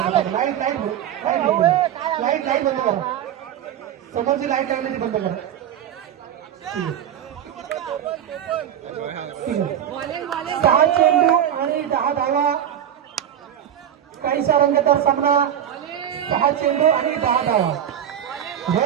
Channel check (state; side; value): quieter; left; 10.0 dB